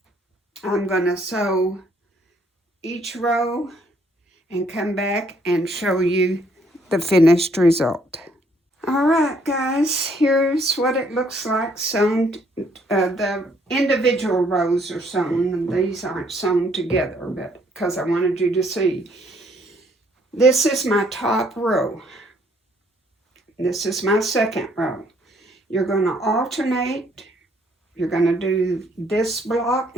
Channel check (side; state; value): both; normal; correlation 0.66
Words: I'm going to sew each row and come back and show you the finished result. All right, guys, here's what it looks like sewn. The individual rows are sewn, and these aren't sewn together, but because I wanted you to see. This is my top row. This is my second row. You're going to alternate. You're going to do this block